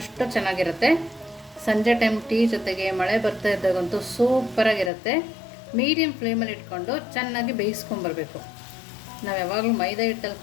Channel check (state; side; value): drops out; right; at 4.9 s